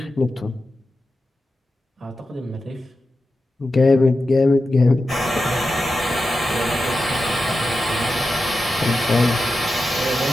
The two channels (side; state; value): both; normal; correlation 0.91